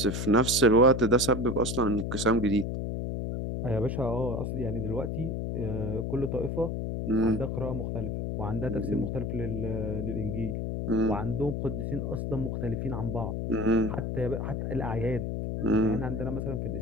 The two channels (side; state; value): left; noise; hum, 2 dB below the sound